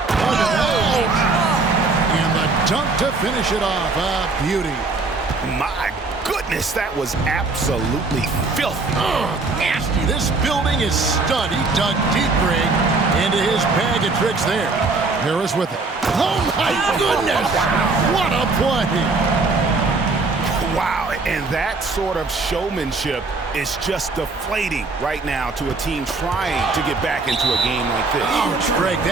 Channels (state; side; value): quieter; left; 3.7 dB